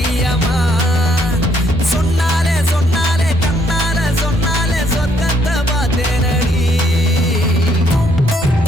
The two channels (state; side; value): normal; both; correlation 0.69